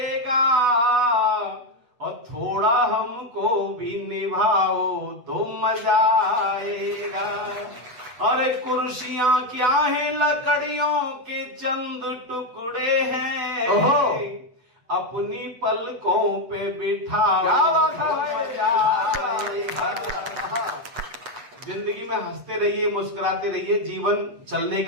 और थोड़ा हमको भी निभाओ तो मजा आएगा। अरे कुर्सियां क्या है, लकड़ियों के चंद टुकड़े हैं। अपनी पलकों पे बिठाओ। क्या बात है। जिंदगी में हंसते रहिए, मुस्कुराते रहिए। जीवन चलने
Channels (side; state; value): left; late; 8.1 ms